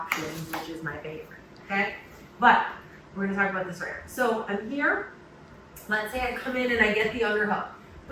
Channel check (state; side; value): identical; both; correlation 1.00